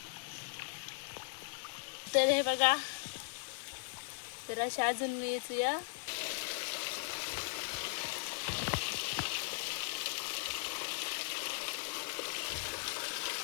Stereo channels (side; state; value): right; silent; 52 dB below the other